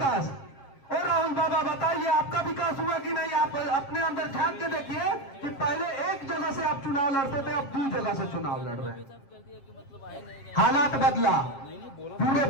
और राहुल बाबा बताइए आपका विकास हुआ कि नहीं? आप अपने अंदर झांक के देखिए कि पहले एक जगह से आप चुनाव लड़ते थे, अब 2 जगह से चुनाव लड़ रहे हैं। हालात बदला। पूरे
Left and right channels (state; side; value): late; right; 7.4 ms